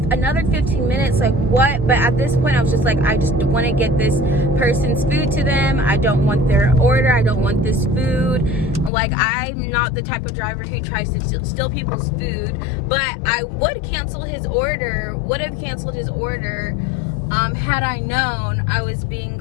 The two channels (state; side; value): drops out; right; at 8.9 s